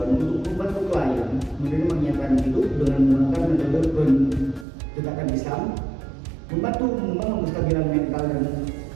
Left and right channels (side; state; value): left; drops out; at 4.7 s